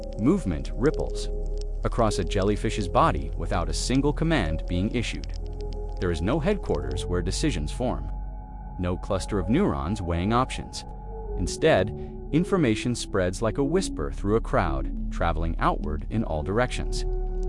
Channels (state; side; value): identical; both; correlation 1.00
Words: Movement ripples across a jellyfish's body without a single command being issued. There is no headquarters where decisions form. No cluster of neurons weighing options. Instead, information spreads like a whisper through a crowd, traveling outward in all directions.